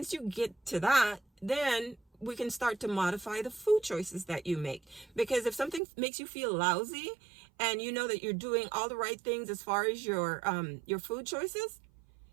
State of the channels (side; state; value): left; drops out; at 5.8 s